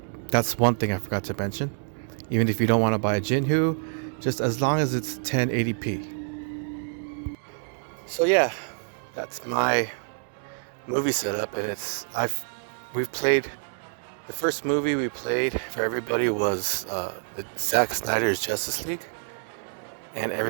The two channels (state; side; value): silent; left; 60 dB below the other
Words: that's one thing I forgot to mention. Even if you don't want to buy a Jinhu, just as long as it's 1080p. So yeah, that's my movie setup, and we've played. The first movie we played for everybody was the Zack Snyder's Justice League, and